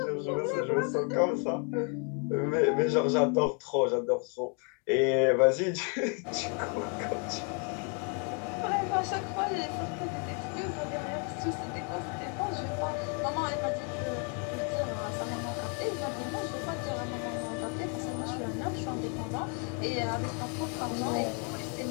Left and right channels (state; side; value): quieter; right; 39.2 dB